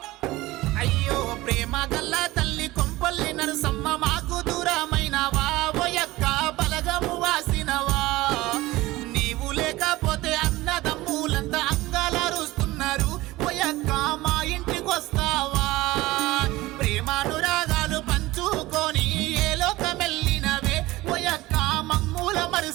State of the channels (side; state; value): left; quieter; 18.8 dB